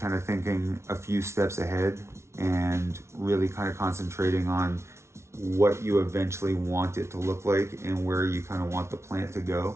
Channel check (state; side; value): late; left; 0.13 ms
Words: of thinking a few steps ahead and really kind of concentrating on what you eventually want it to look like and where you kind of want the plant to